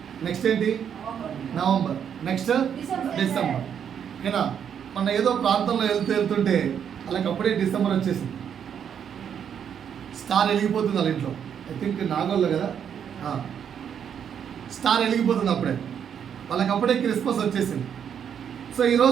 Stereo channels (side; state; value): left; quieter; 8.3 dB